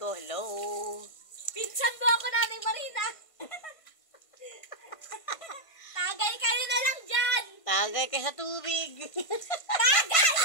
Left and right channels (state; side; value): late; right; 1.5 ms